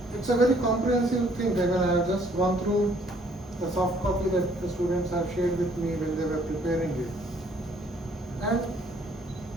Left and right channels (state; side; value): normal; both; correlation 0.62